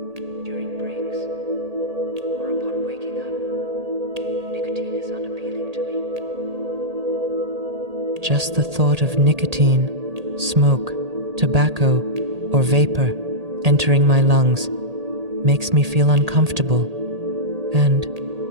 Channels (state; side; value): late; left; 1.8 ms